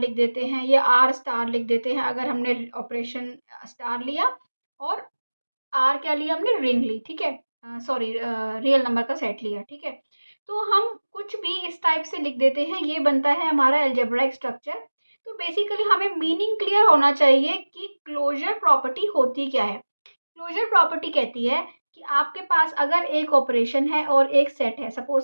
देते हैं या आर स्टार लिख देते हैं अगर हमने ऑपरेशन स्टार लिया, और आर क्या लिया हमने, रिंग ली। ठीक है, सॉरी, रियल नंबर का सेट लिया। ठीक है, तो हम कुछ भी इस टाइप से लिख देते हैं, ये बनता है हमारा अलजेब्राइक स्ट्रक्चर। तो बेसिकली हमें मीनिंग क्लियर होना चाहिए कि क्लोजर प्रॉपर्टी होती क्या है। क्लोजर प्रॉपर्टी कहती है कि आपके पास अगर एक ऑपरेशन है और एक सेट है,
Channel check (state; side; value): inverted; both; correlation -1.00